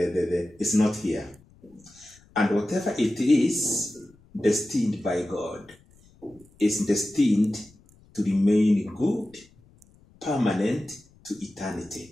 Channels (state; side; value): noise; left; rumble, 29 dB below the sound